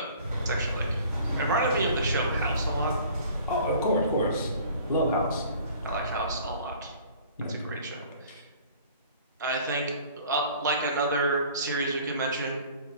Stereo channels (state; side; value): inverted; both; correlation -0.50